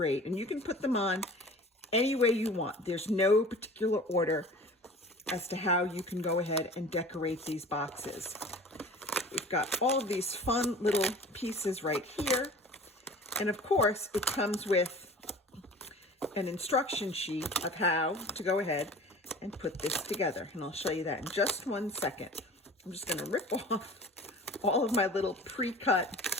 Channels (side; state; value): both; normal; correlation 0.42